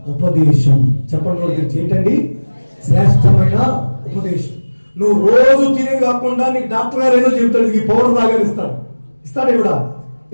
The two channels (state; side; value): inverted; both; correlation -1.00